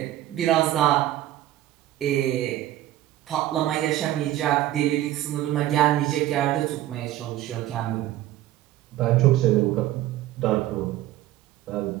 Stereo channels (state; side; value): quieter; left; 14.3 dB